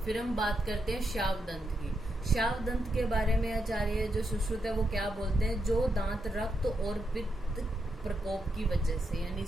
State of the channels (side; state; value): both; normal; correlation 0.83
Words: फिर हम बात करते हैं शावदंत की। शावदंत के बारे में आचार्य जो सुश्रुत है वो क्या बोलते हैं, जो दांत रक्त और पित्त प्रकोप की वजह से, यानी